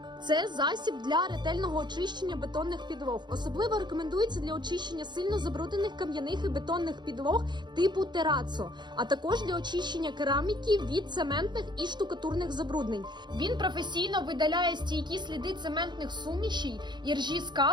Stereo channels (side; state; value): left; late; 0.21 ms